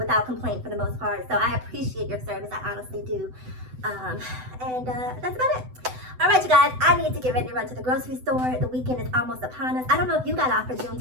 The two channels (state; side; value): late; left; 7.9 ms